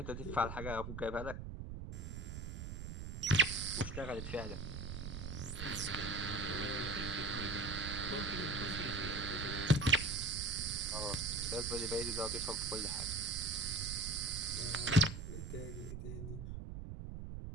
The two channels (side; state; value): right; noise; rumble, 6 dB below the sound